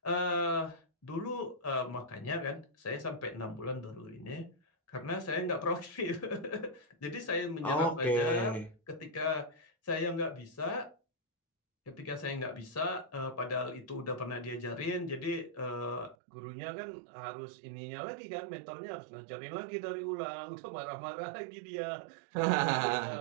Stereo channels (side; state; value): left; drops out; at 16.2 s